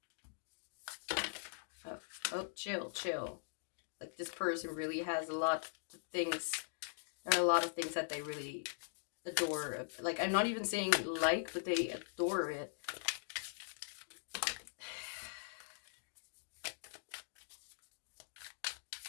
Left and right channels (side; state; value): right; silent; digital silence